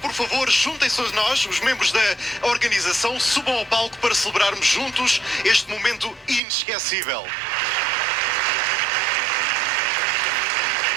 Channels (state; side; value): drops out; left; at 6.4 s